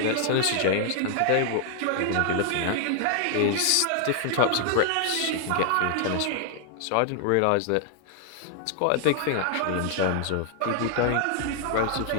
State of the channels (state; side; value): different; both; correlation 0.00